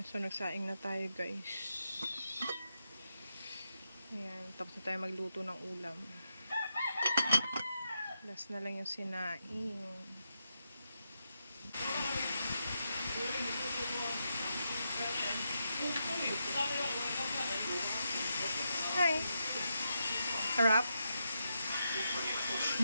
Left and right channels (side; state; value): both; inverted; correlation -0.85